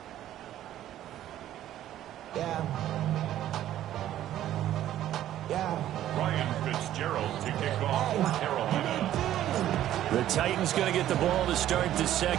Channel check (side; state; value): left; quieter; 12.5 dB